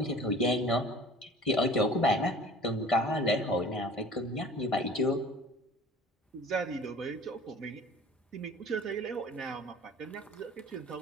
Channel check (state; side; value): normal; both; correlation 0.46